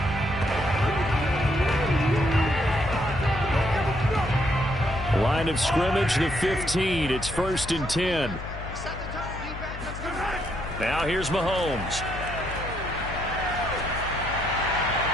Line of scrimmage, the 15. It's 1st and 10. Now here's Mahomes.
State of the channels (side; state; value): left; noise; hum, 10 dB below the sound